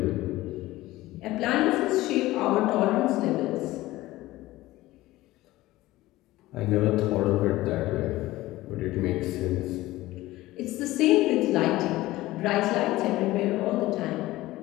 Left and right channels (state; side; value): quieter; right; 17.5 dB